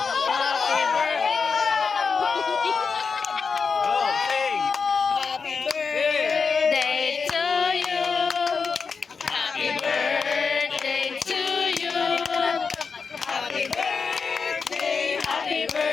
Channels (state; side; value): quieter; right; 5.3 dB